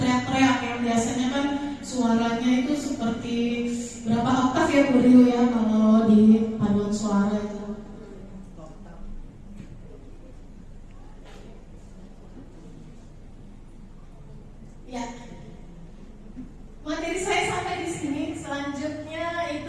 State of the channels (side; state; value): both; identical; correlation 1.00